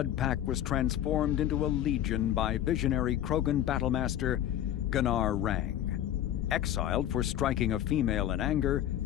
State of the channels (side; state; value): right; quieter; 11.6 dB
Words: Pack was transformed into a legion by visionary Krogan battlemaster Gunnar Rang. Exiled for striking a female in anger,